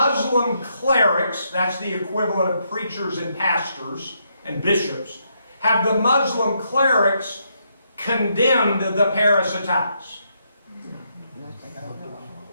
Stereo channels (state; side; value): inverted; both; correlation -0.77